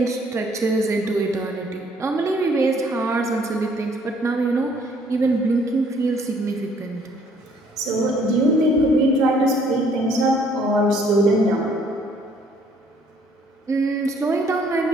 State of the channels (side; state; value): both; normal; correlation 0.62